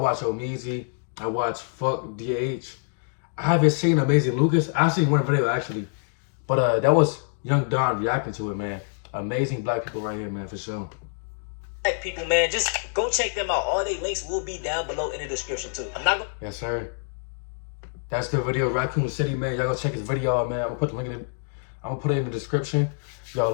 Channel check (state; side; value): silent; right; digital silence